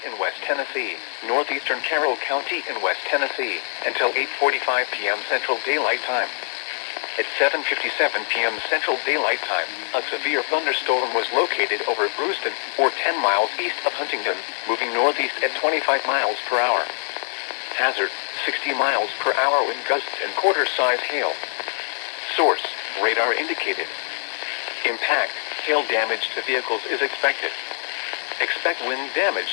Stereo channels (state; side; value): silent; right; digital silence